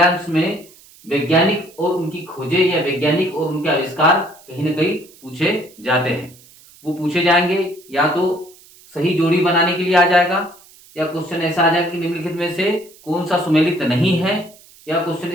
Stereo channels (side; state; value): right; noise; hiss, 25 dB below the sound